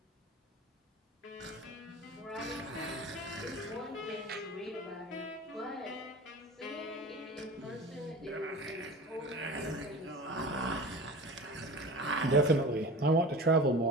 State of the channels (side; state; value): both; normal; correlation 0.35